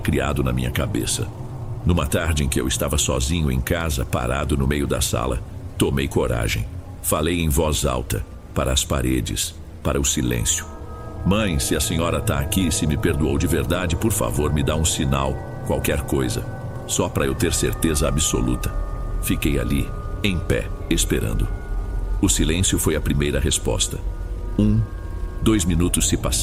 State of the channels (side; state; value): both; identical; correlation 1.00